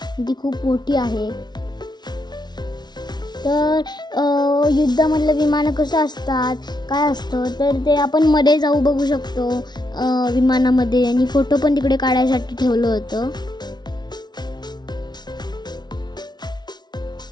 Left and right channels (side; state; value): right; late; 0.20 ms